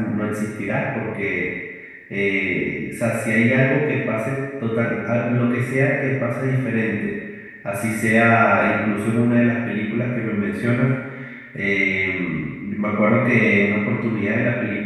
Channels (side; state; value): both; identical; correlation 1.00